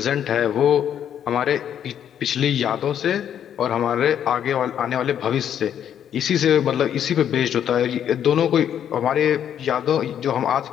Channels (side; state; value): right; quieter; 9.5 dB